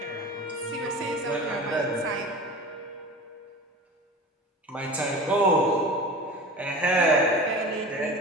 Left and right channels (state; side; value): normal; both; correlation 0.35